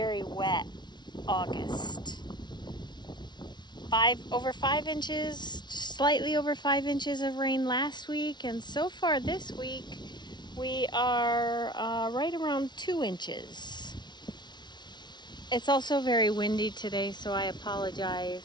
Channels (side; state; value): right; late; 0.21 ms